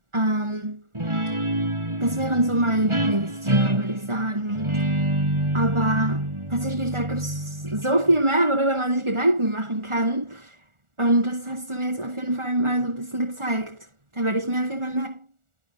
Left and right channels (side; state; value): left; late; 1.4 ms